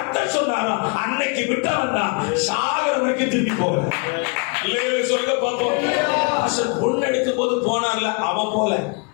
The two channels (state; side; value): quieter; right; 33.4 dB